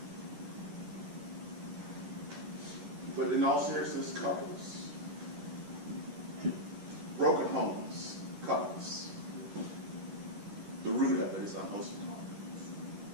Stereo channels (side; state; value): left; late; 10 ms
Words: But in all seriousness, couples, broken homes, couples, the root of it is unwholesome talk.